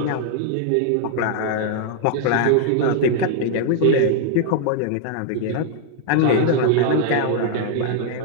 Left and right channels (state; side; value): different; both; correlation 0.00